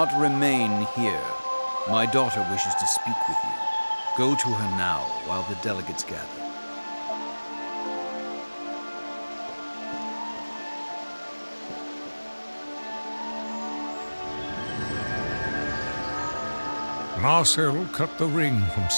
remain here. My daughter wishes to speak with you. Go to her now while the delegates gather. Narsil cut the ring from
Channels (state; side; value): inverted; both; correlation -1.00